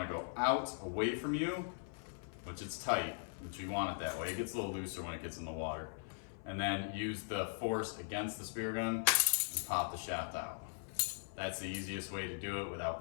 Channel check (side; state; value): right; silent; 51 dB below the other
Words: to go out away from you, which it's tight, which you want it that way. It gets a little looser when it gets in the water. And then use the force against the spear gun and pop the shaft out. That's the easiest way to do it without